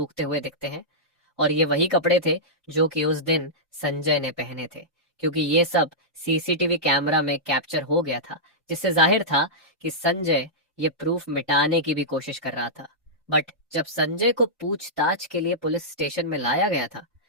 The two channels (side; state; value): both; normal; correlation -0.12